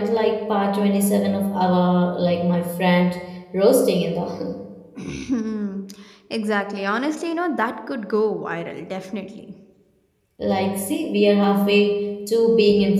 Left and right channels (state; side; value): identical; both; correlation 1.00